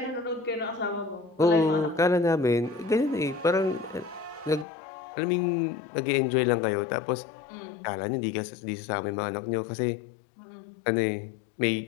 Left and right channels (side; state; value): right; drops out; at 4.7 s